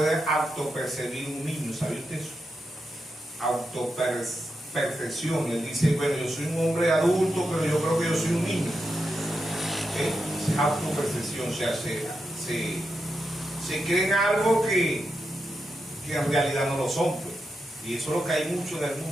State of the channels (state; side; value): normal; both; correlation 0.86